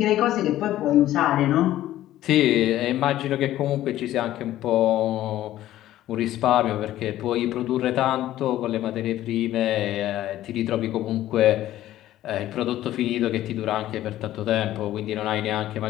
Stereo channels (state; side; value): quieter; right; 13.9 dB